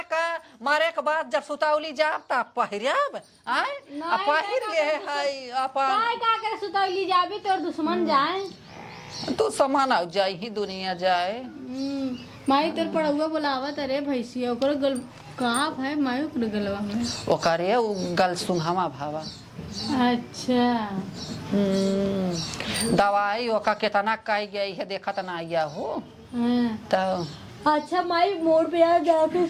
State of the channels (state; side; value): identical; both; correlation 1.00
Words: का मारे के बाद जब सुतावली जाब तब पहिरब आए पहिर ले है अपन का करे सुतौली जाबे तोर दुश्मन जाए तू समान आ जाए ही दुनिया जाए। माई तोर पढ़ुआ बोलावत अरे भैंसिया ओकर गल कहा है माई ओकर गलवा में ओकरे गल सुंघावा भावा। अच्छा दवाई ओका कितना कही गई है देखत ना आया हो। तो अच्छा माई मोड़ पे आ जाके